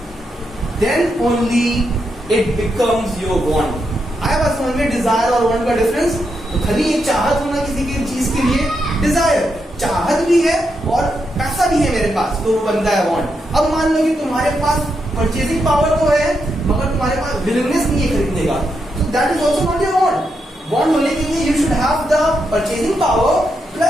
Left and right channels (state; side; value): normal; both; correlation 0.83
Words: then only it becomes your want. आया बात समझ में डिजायर और वांट का difference? तो खाली एक चाहत होना किसी की चीज के लिए डिजायर, चाहत भी है और पैसा भी है मेरे पास, तो वो बनता है वांट. अब मान लो कि तुम्हारे पास परचेजिंग पावर तो है, मगर तुम्हारे पास विलिंगनेस नहीं है खरीदने का, तो that is also not your want. Want होने के लिए you should have the purchasing power